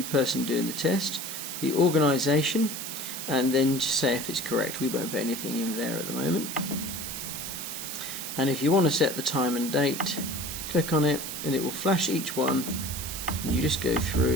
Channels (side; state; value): right; noise; hiss, 6 dB below the sound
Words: person doing the test, the organisation, and then just say if it's correct. We won't put anything in there at the moment. And if you want to set the time and date, click on it and it will flash each one, and you just go